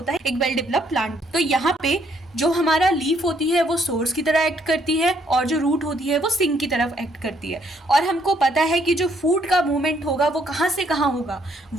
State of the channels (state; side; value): normal; both; correlation 0.69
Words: है एक वेल डेवलप प्लांट। तो यहाँ पे जो हमारा लीफ होती है वो सोर्स की तरह एक्ट करती है और जो रूट होती है वो सिंक की तरफ एक्ट करती है। और हमको पता है कि जो फूड का मूवमेंट होगा वो कहाँ से कहाँ होगा,